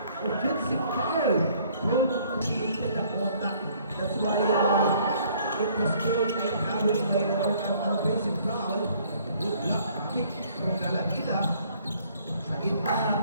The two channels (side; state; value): both; inverted; correlation -0.60